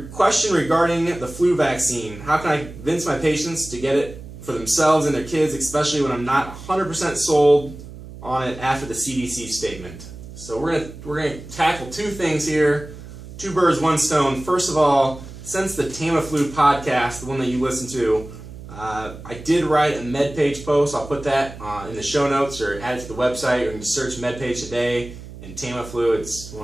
question regarding the flu vaccine. How can I convince my patients to get it for themselves and their kids, especially when I'm not 100% sold on it after the CDC statement? So we're gonna tackle two things here. Two birds, one stone. First of all, since the Tamiflu podcast, the one that you listen to, I did write a MedPage post. I'll put that in the show notes or add it to the website, or you can just search MedPage today and Tamiflu. It's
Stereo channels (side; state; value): right; noise; hum, 14 dB below the sound